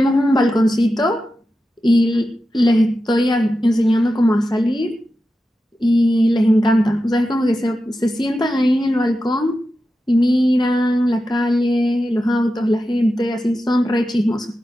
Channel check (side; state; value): both; normal; correlation 0.91